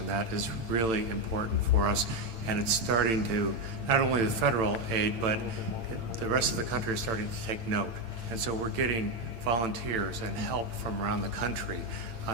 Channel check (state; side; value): late; left; 8.9 ms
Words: That is really important for us, and it's starting to, not only the federal aid, but the rest of the country is starting to take note. And so we're getting volunteers and help from around the country,